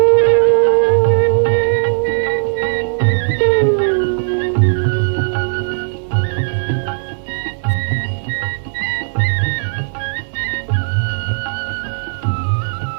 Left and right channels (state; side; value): silent; left; digital silence